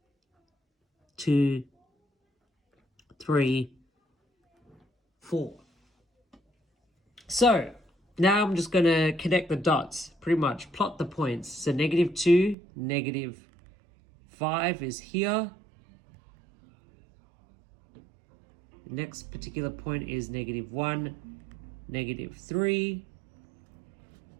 2, 3, 4. So now I'm just going to connect the dots, pretty much plot the points. So -2, -5 is here. The next particular point is -1, -3.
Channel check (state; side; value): drops out; left; at 12.6 s